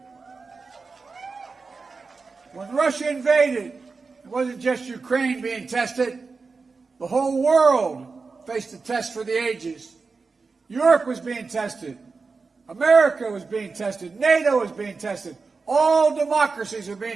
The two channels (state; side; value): quieter; left; 4.4 dB